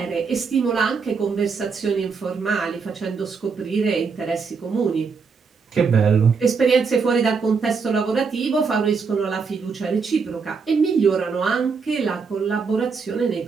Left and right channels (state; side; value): quieter; left; 5.3 dB